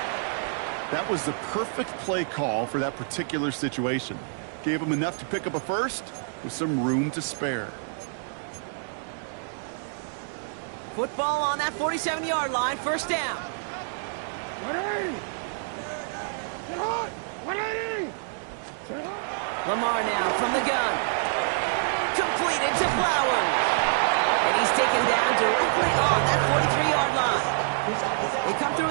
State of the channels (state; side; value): silent; left; digital silence